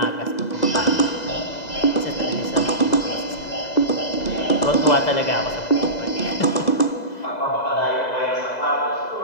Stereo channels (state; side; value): late; right; 2.0 ms